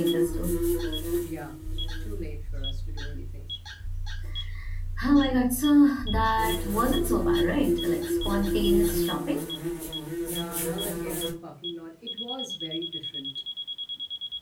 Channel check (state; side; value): identical; both; correlation 1.00